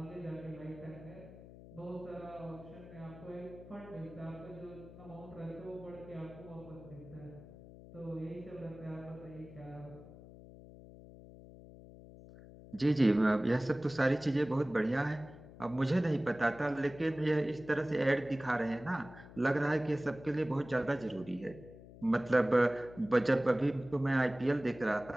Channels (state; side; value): noise; left; hum, 18 dB below the sound